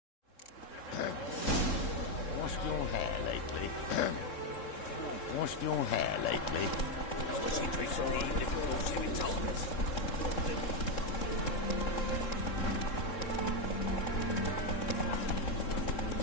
Washed your hair lately? Washed your hair lately? I was interested in the evening before she retires.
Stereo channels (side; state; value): right; late; 3.7 ms